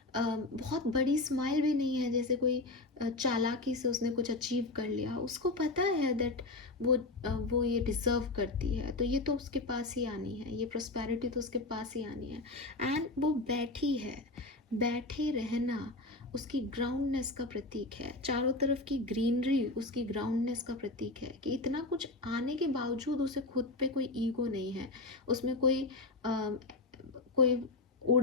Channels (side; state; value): right; quieter; 3.1 dB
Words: बहुत बड़ी स्माइल भी नहीं है जैसे कोई चालाकी से उसने कुछ अचीव कर लिया। उसको पता है दैट वो ये डिज़र्व करती है, तो ये तो उसके पास ही आनी है, ये प्रॉस्पेरिटी तो उसके पास ही आनी है। एंड वो बैठी है, बैठे रहना उसकी ग्राउंडनेस का प्रतीक है। चारों तरफ की ग्रीनरी उसकी ग्राउंडनेस का प्रतीक है, कि इतना कुछ आने के बावजूद उसे खुद पे कोई ईगो नहीं है, उसमें कोई